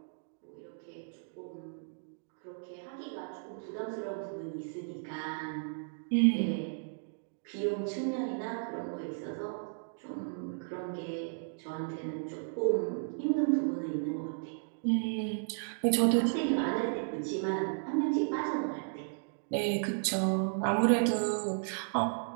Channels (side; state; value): left; silent; digital silence